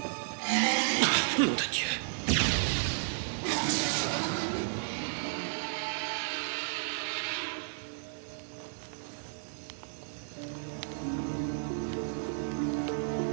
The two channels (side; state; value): left; silent; 56 dB below the other